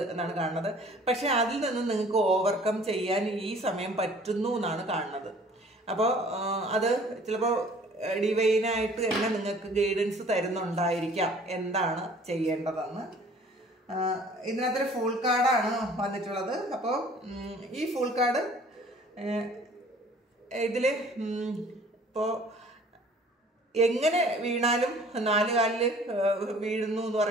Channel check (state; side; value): normal; both; correlation 0.52